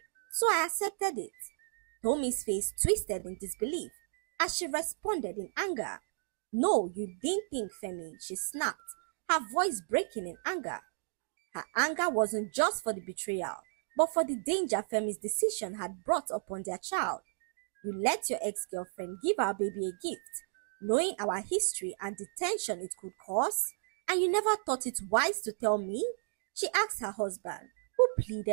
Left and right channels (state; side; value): silent; left; digital silence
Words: so I accepted it." Tommy's face twisted in disbelief as she responded in anger. "No, you didn't think, Femi," she snapped, her voice breaking in anger. Her anger wasn't just for the betrayal, but for the danger Femi's decision had brought upon their child. "You let your ex-girlfriend give our baby a gift, knowing our history and the tension it could cause, and you never thought it wise to tell me?" she asked her husband, who